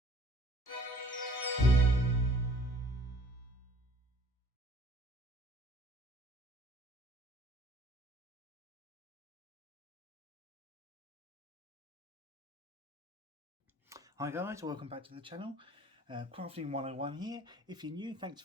guys, welcome back to the channel. Crafting 101 here. If you're new, thanks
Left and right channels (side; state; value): both; normal; correlation 0.54